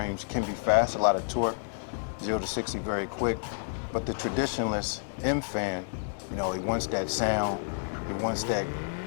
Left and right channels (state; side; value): silent; right; digital silence